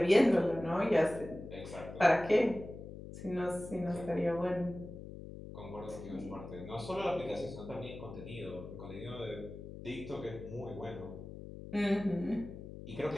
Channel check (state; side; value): noise; left; hum, 12 dB below the sound